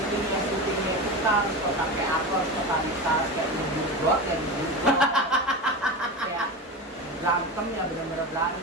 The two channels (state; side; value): normal; both; correlation 0.24